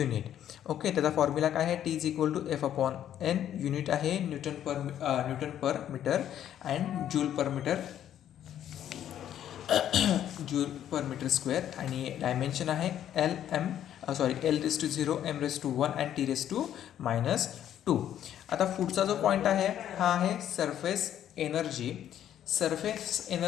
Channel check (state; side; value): quieter; right; 10.7 dB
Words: ओके. त्याचा फॉर्म्युला काय आहे, T is equal to F upon N. Unit आहे newton per metre and joule per metre square. आणि डायमेन्शन आहे L raise to 0, M raise to 1 and T raise to -2. आता पुढचा जो पॉईंट आहे हा आहे सरफेस एनर्जी. सरफेस